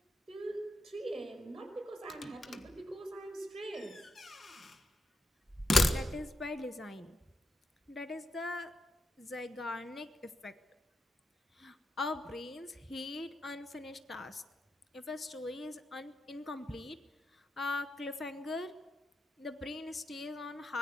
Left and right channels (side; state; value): both; normal; correlation 0.84